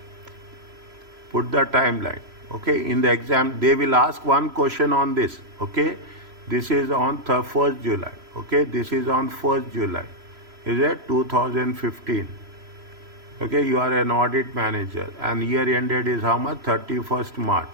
Put the timeline. Okay, in the exam, they will ask one question on this. Okay, this is on 1st July. Okay, this is on 1st July. Is it 2015? Okay, you are an audit manager and year ended is how much? 31st March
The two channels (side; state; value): left; late; 3.0 ms